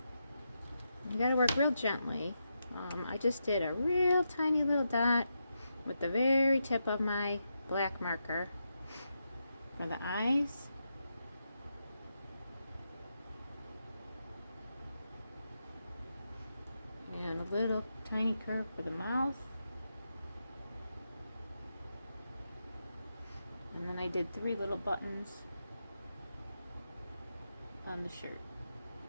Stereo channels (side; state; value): both; inverted; correlation -0.85